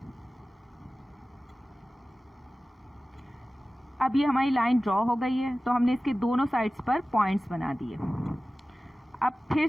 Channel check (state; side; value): normal; both; correlation 0.96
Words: अब ये हमारी लाइन ड्रॉ हो गई है, तो हमने इसके दोनों साइड्स पर पॉइंट्स बना दिए। अब फिर